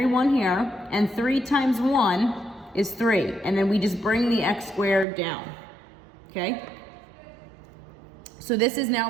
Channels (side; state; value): left; drops out; at 5.1 s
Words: 1 here, and 3 times 1 is 3. And then we just bring the x squared down, okay? So this is now